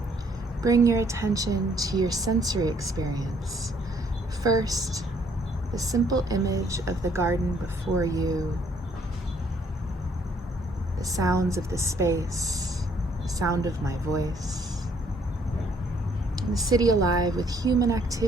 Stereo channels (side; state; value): both; normal; correlation 0.65